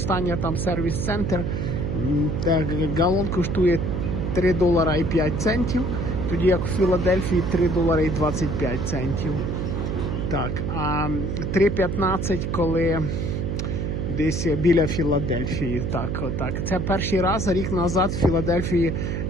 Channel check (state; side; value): noise; right; hum, 2 dB below the sound